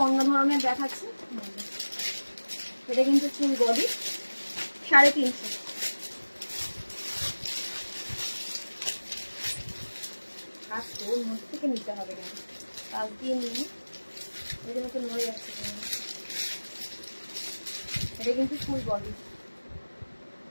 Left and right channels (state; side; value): inverted; both; correlation -1.00